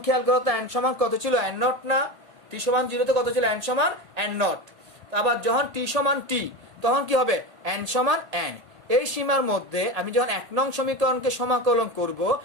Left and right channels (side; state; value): left; late; 1.7 ms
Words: খেয়াল করো তো n সমান কত ছিল, n0 না, t সমান 0 তে কত ছিল, n সমান n0। আবার যখন t সমান t, তখন কি হবে, n সমান n। এই সীমার মধ্যে আমি যখন 1 নং সমীকরণকে সমাকলন করব,